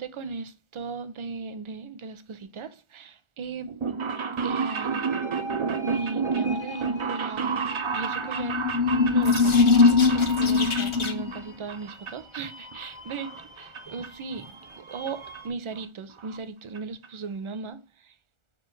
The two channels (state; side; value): late; left; 1.4 ms